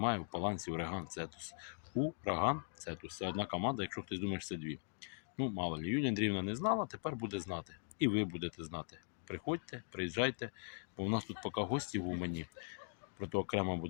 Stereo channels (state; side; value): silent; right; digital silence